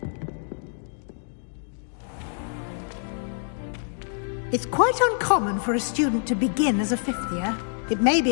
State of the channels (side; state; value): right; silent; 61 dB below the other